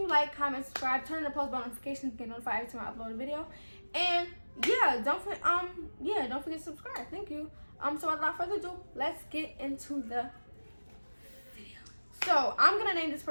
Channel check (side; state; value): both; inverted; correlation -1.00